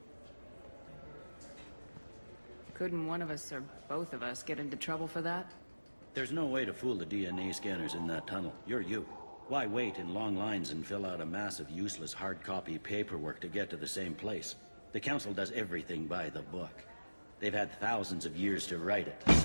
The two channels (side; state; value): both; inverted; correlation -1.00